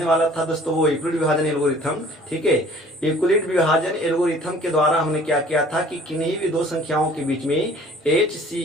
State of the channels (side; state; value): both; normal; correlation 0.52